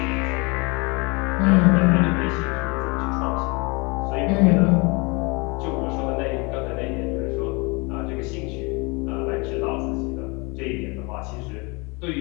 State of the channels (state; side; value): quieter; right; 28.4 dB